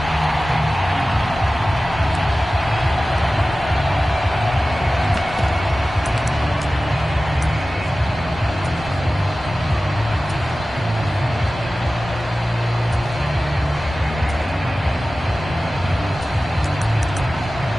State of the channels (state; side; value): normal; both; correlation 0.96